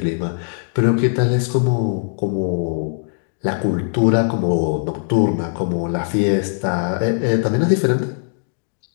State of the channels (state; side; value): silent; right; digital silence